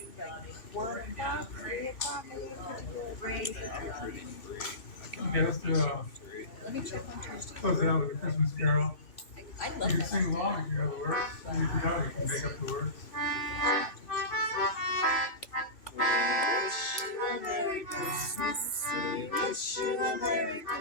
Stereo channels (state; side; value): late; right; 3.4 ms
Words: 1 o'clock, 3 o'clock, any particular day. I'm pretty free. Okay, let's do Let me check on Tuesday. close it out with a Christmas carol. I You can sing along if you know the words. And if you don't, you can make up the words. Wish you a Merry Christmas. We wish you a Merry